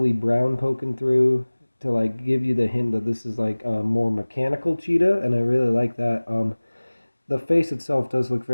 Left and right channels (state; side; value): inverted; both; correlation -1.00